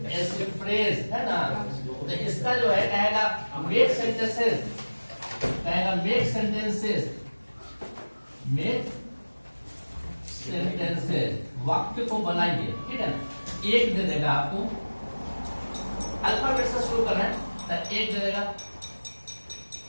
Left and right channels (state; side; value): inverted; both; correlation -1.00